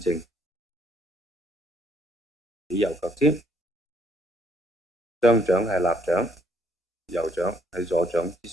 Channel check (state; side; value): normal; both; correlation 0.68